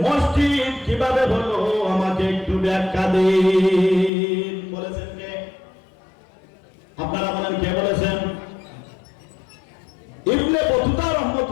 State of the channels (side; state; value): right; drops out; at 4.1 s